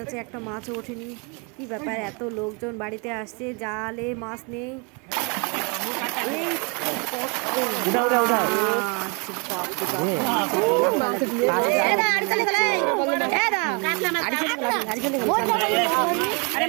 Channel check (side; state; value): left; quieter; 32.8 dB